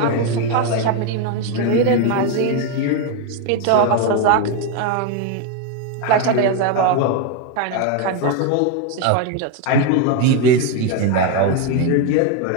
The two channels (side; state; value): both; different; correlation 0.02